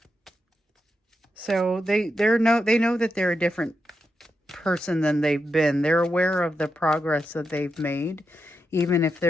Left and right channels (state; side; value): normal; both; correlation 0.86